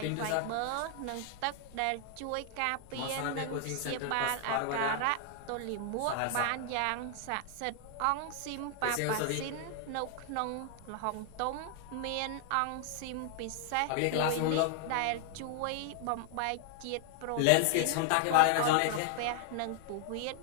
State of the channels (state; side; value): different; both; correlation 0.00